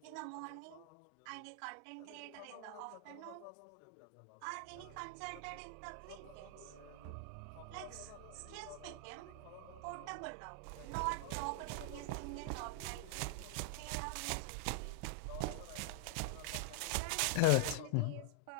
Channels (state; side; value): different; both; correlation -0.01